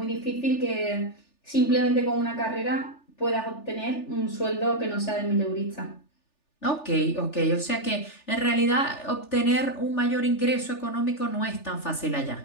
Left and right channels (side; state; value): right; late; 3.4 ms